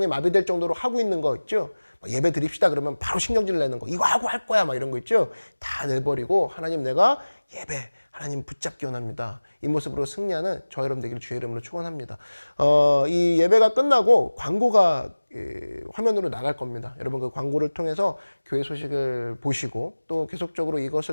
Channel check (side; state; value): both; inverted; correlation -1.00